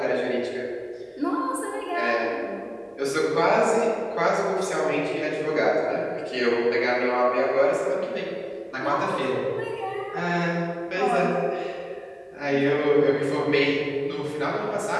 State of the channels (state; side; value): identical; both; correlation 1.00